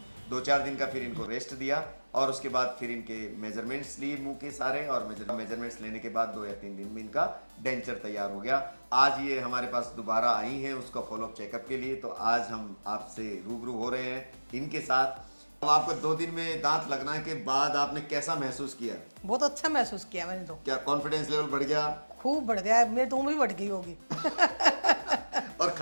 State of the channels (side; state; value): both; inverted; correlation -1.00